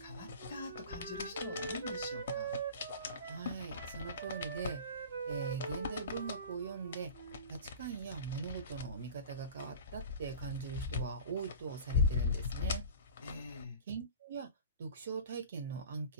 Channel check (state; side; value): inverted; both; correlation -0.39